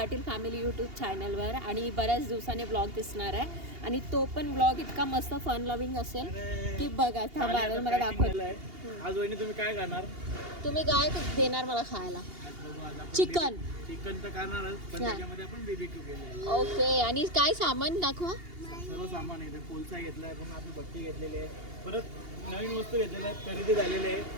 फॅमिली यूट्यूब चॅनलवर. आणि बऱ्याच दिवसाने ब्लॉग दिसणार आहे आणि तो पण ब्लॉग इतका मस्त फन लविंग असेल की बघा. थांबा मला दाखवते. आज वहिनी तुम्ही काय करणार? तुम्ही काय देणार मला खायला? चिकन. चिकन तर करणारच, पण त्याच्यामध्ये आपण बीबीक्यू केले. ओके. आणि काय सामान दाखवा? सर्व सामान आहे. कोलसा घेतलाय, पण आपली भट्टी घेतलेली आहे, परत नवीन वस्तू घेतलेल्या आहेत, खरेदी झालेली आहे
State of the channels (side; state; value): left; late; 2.8 ms